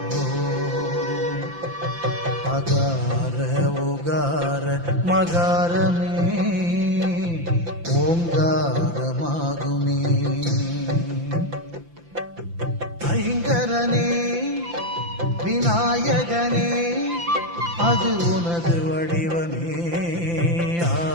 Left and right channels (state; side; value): late; left; 5.9 ms